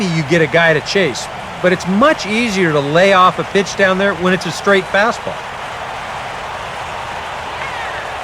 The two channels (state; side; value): identical; both; correlation 1.00